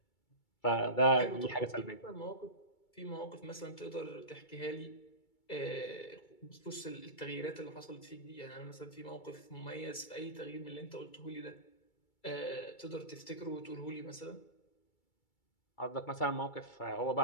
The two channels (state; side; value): late; right; 2.3 ms